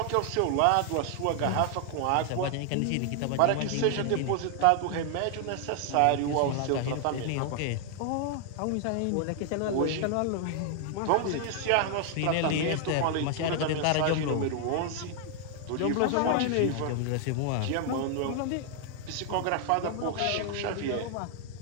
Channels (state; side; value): different; both; correlation 0.00